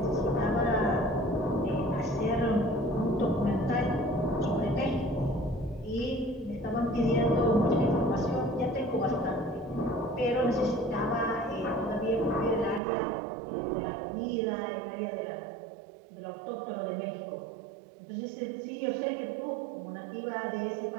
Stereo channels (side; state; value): left; drops out; at 12.8 s